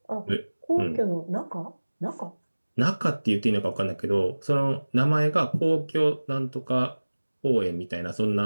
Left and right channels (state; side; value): inverted; both; correlation -1.00